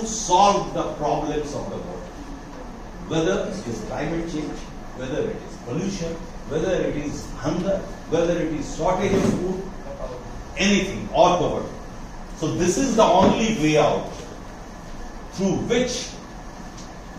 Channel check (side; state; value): both; identical; correlation 1.00